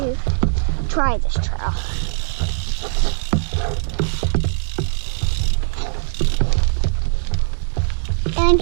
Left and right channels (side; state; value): left; silent; digital silence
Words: try this trail.